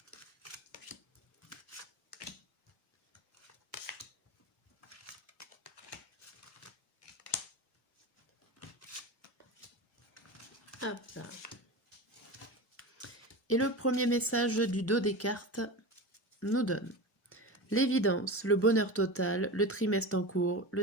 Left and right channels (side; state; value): both; normal; correlation 0.26